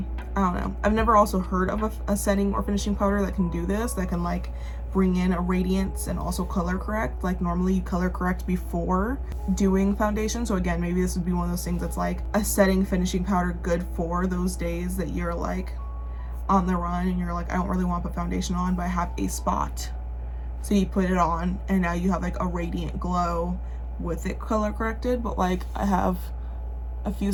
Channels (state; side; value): identical; both; correlation 1.00